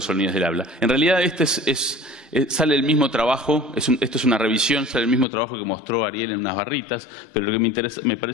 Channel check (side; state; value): right; drops out; at 5.2 s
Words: sonidos del habla. En realidad sale el mismo trabajo, esto es una revisión, sale el mismo trabajo que mostró Ariel en unas barritas, pero lo que me